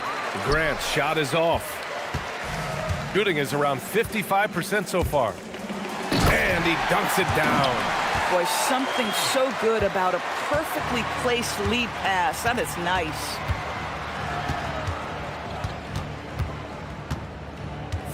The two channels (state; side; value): identical; both; correlation 1.00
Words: Grant's shot is off. Shooting is around 55% so far. And he dunks it down. Boy, something so good about a perfectly placed lead pass. That is nice.